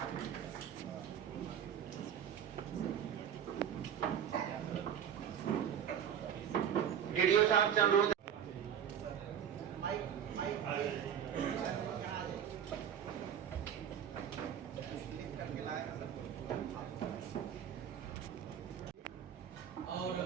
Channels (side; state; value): left; quieter; 9.0 dB